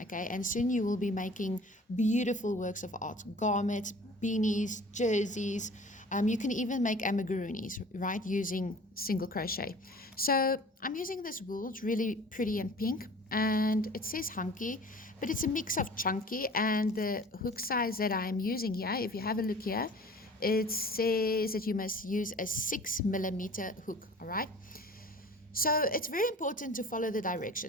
Okay, and soon you will be making beautiful works of art, garments, beanies, jerseys. You can even make amigurumis, right, using single crochet. So I'm using this wool. It's really pretty and pink, and it says hunky, but it's a mix of chunky, and the hook size that I'm using here, if you have a look here, it says that you must use a 6mm hook. All right, so it's very important to follow the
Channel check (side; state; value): both; normal; correlation 0.45